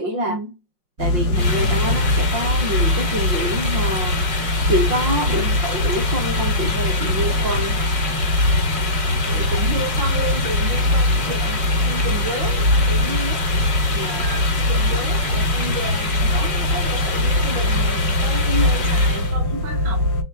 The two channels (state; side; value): late; left; 5.6 ms